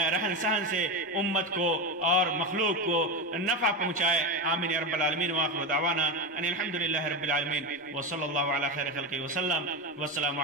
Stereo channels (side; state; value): both; normal; correlation 0.15